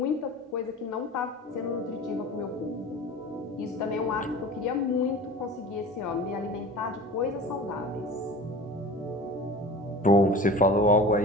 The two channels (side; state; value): both; normal; correlation 0.37